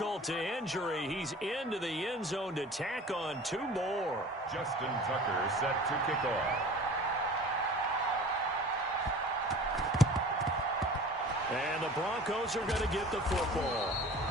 to injury. He's into the end zone to tack on 2 more. Justin Tucker set to kick off. And the Broncos are going to get the football.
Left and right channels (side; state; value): both; normal; correlation 0.42